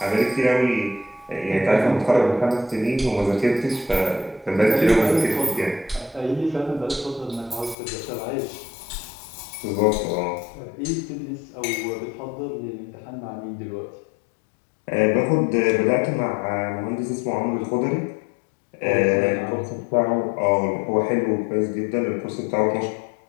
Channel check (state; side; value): drops out; right; at 7.8 s